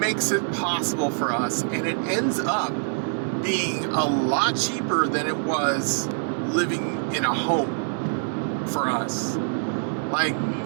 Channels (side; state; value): left; silent; 62 dB below the other